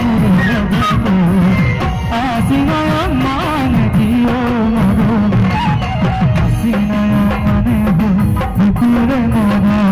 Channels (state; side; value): identical; both; correlation 1.00